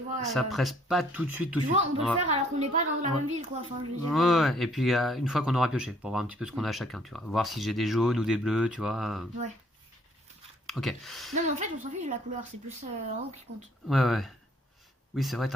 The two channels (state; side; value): normal; both; correlation 0.62